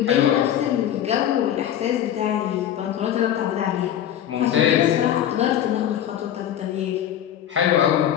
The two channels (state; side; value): quieter; right; 10.7 dB